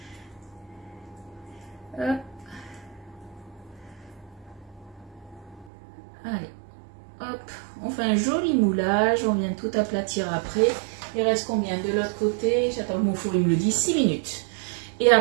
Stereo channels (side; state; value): left; drops out; at 5.7 s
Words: Hop. Allez, hop. On fait un joli moulage. On vient tout aplatir après. Il reste combien de l'autre côté? J'attends que mon four il me le dit. 6 minutes. Et